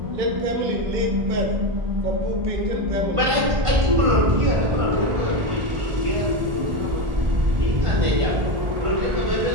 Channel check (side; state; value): left; late; 1.5 ms